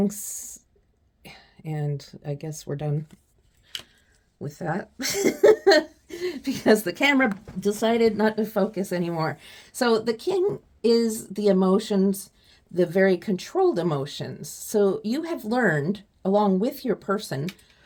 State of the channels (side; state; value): both; identical; correlation 1.00